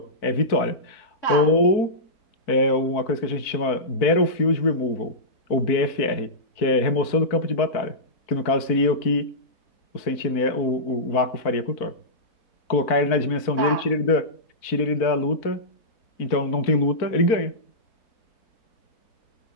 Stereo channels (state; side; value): late; right; 4.5 ms